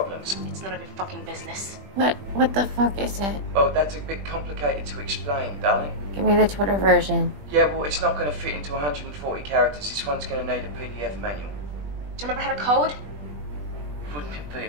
It's none of your fucking business. What the fuck is it? Oh, that's a bit complicated to explain, darling. Give me the Twitter version. Yeah, well, it's not gonna fit into 140 characters. This one's gonna need a PDF manual. Do you remember how to code? Wouldn't it be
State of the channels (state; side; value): late; left; 20 ms